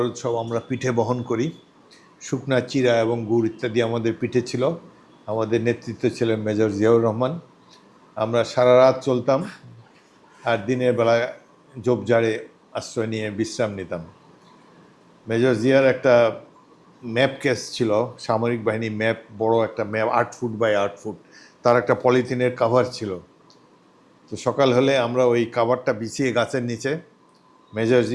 সব আমরা পিঠে বহন করি, শুকনা চিরা এবং গুড় ইত্যাদি আমাদের পিঠে ছিল। আমাদের নেতৃত্ব ছিলেন মেজর জিয়াউর রহমান। আমরা সারা রাত চলতাম আর দিনের বেলা ঝোপঝাড়ে আশ্রয় নিয়ে বিশ্রাম নিতাম। মেজর জিয়ার একটা ম্যাপ কেস ছিল, সামরিক বাহিনী ম্যাপ, বড় একটা ম্যাপ, 8 ফুট বাই 8 ফুট, তার একটা পলিথিনের কাভার ছিল। তো সকাল হলে আমরা ওই কাভারটা বিছিয়ে গাছের নিচে মেজর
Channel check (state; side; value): identical; both; correlation 1.00